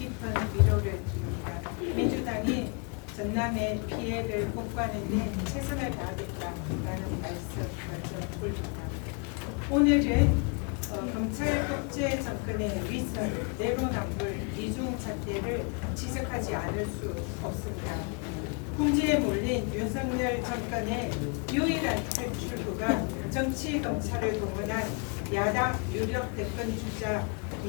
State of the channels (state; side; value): quieter; right; 34.9 dB